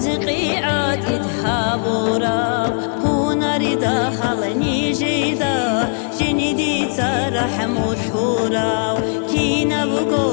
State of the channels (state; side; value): silent; right; 63 dB below the other